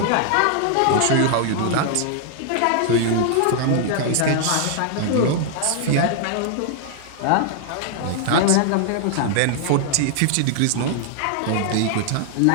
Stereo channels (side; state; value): both; different; correlation 0.00